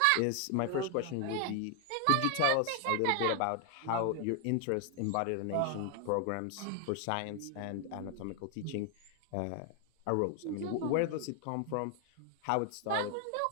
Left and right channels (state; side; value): different; both; correlation 0.00